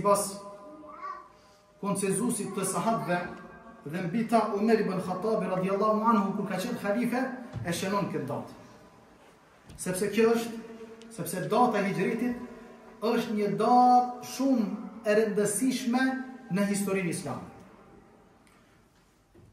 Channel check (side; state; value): both; identical; correlation 1.00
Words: konsenzusit të sahabëve dhe mbi ta Umar ibn Khattabi radhiyallahu anhu kur ka qenë halife e shënon këtë datë. Sepse data e hijritit është një datë shumë e rëndësishme në historinë islame.